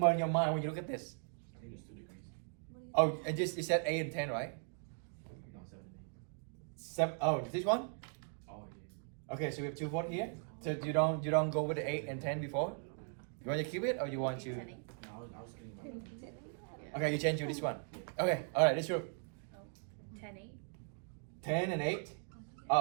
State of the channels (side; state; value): left; silent; 52 dB below the other